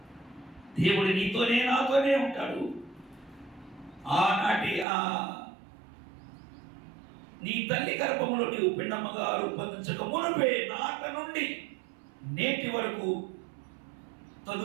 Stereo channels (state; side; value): drops out; left; at 4.9 s